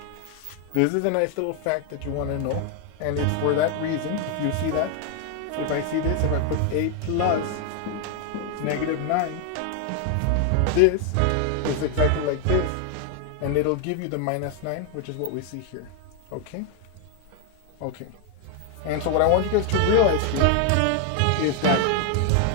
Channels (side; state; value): both; different; correlation 0.01